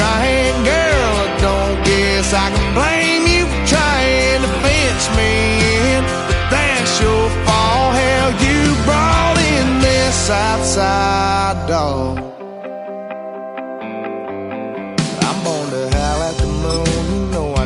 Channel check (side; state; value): both; identical; correlation 1.00